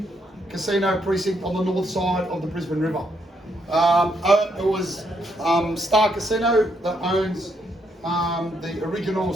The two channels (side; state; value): both; normal; correlation 0.75